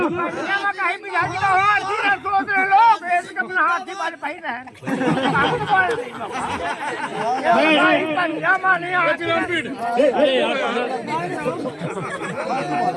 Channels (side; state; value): both; identical; correlation 1.00